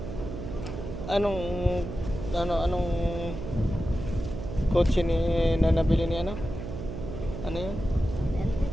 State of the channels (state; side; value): noise; right; hum, 7 dB below the sound